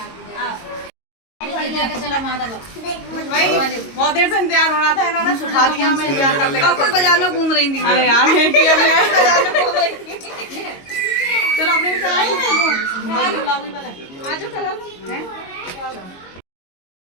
बहुत देर से इंतजार हो रहा था, इन्होंने सुखा दिया हमें इंतजार करते। बाजार में घूम रही थी। अरे यार चलो अपने भी चलाएं वो गुलाबी वाला आ जाओ चला लो हैं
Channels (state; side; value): late; right; 22 ms